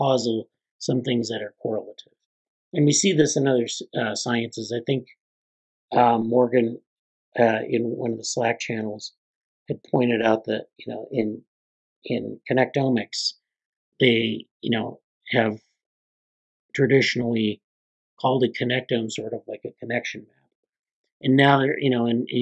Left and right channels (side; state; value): both; identical; correlation 1.00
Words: some things that are correlative. And we see this in other sciences. I think Morgan, in one of the Slack channels, had pointed out that, in connectomics, they, have traditionally called a connectome sort of like a connection map. And now they're, and